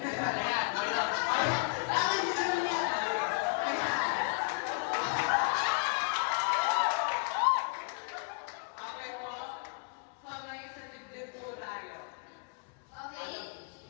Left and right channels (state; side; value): quieter; right; 36.1 dB